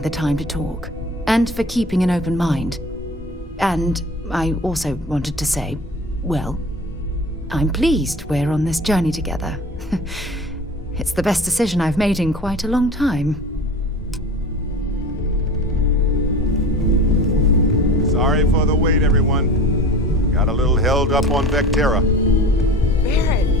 the time to talk, and for keeping an open mind. And I also wanted to say, well, I'm pleased we're on this journey together. It's the best decision I've made in quite a long time. Sorry for the wait, everyone. Got a little held up on Vectera. Barrett,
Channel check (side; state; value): both; normal; correlation 0.38